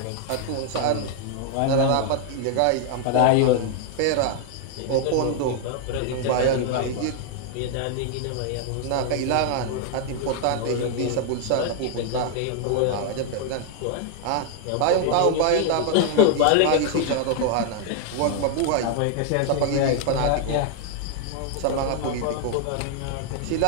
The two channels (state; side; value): different; both; correlation 0.00